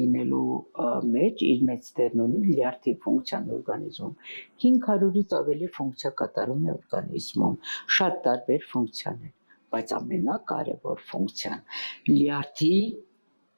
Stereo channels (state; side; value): inverted; both; correlation -1.00